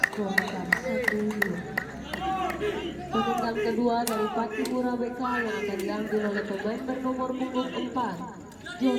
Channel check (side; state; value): both; identical; correlation 1.00